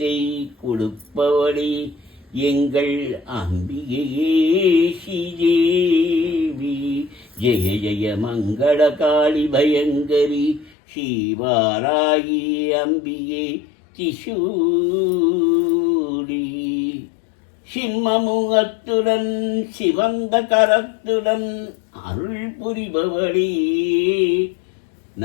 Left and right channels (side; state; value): right; drops out; at 10.7 s